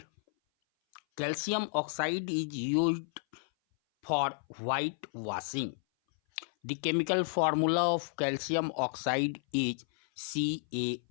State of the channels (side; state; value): right; silent; 56 dB below the other